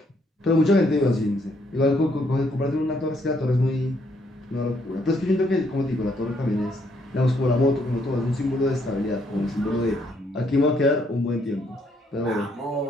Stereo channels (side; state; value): both; normal; correlation 0.71